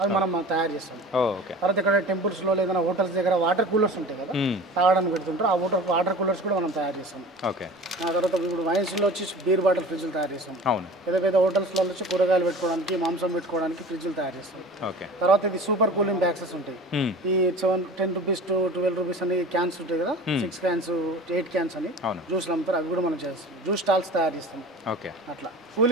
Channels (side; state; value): both; normal; correlation 0.39